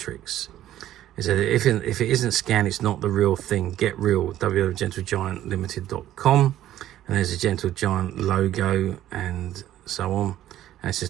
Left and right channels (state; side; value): quieter; left; 12.9 dB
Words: It said if it isn't scanned, it's not the real thing. Get real. www.gentlegiantlimited.com, and there's a Gentle Giant logo and so on. And it says